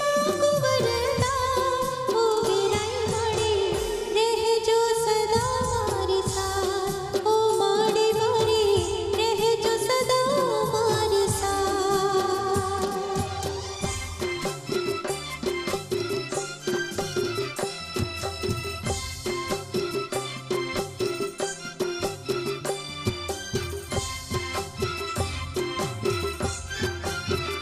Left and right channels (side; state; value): both; identical; correlation 1.00